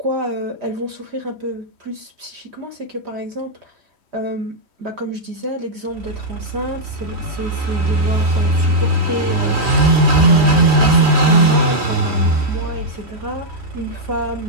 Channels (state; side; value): late; left; 3.1 ms